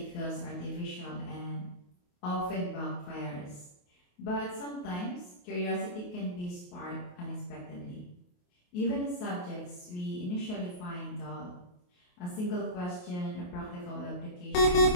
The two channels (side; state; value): right; late; 28 ms